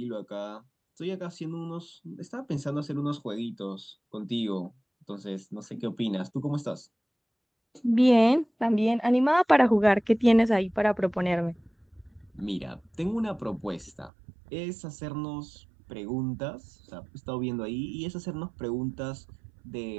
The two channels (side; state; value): left; drops out; at 14.1 s